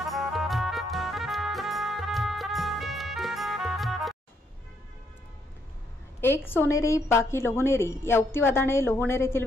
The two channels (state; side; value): normal; both; correlation 0.73